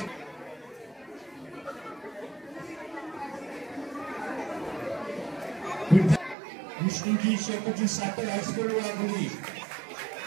विष्णुजी शेकोजी साखर हायस्कूल वाघोली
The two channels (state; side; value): drops out; left; at 6.4 s